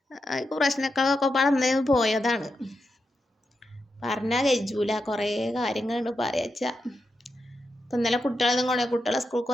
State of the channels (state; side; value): normal; both; correlation 0.86